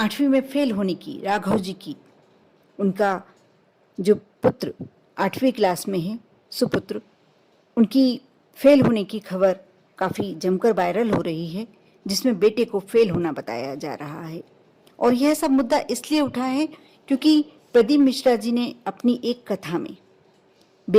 में फेल होने की, राघव जी की, उनका जो पुत्र 8वीं क्लास में है, सुपुत्र, उनकी फेल होने की खबर काफ़ी जमकर वायरल हो रही है, जिसमें बेटे को फेल होना बताया जा रहा है। और यह सब मुद्दा इसलिए उठा है क्योंकि प्रदीप मिश्रा जी ने अपनी एक कथा में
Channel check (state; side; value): identical; both; correlation 1.00